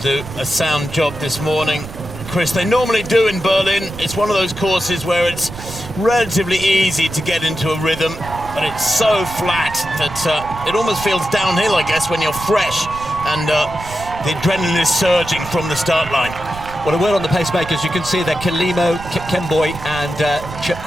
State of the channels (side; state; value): right; noise; rumble, 13 dB below the sound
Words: a sound job this morning. Chris, they normally do in Berlin. It's one of those courses where it's relatively easy to get into a rhythm, but it's so flat that it almost feels downhill, I guess, when you're fresh and the adrenaline is surging from the start line. Well, a word on the pacemakers. You can see that Kipchoge, Kipchoge and